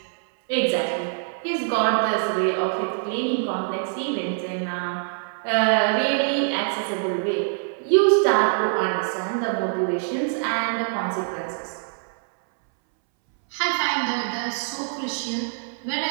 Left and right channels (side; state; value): left; silent; 62 dB below the other